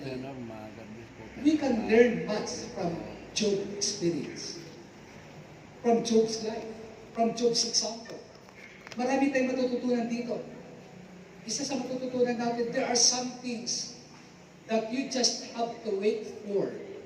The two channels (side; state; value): both; identical; correlation 1.00